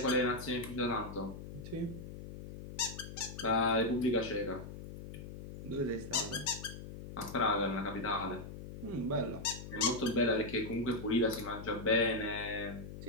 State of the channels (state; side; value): noise; left; hum, 11 dB below the sound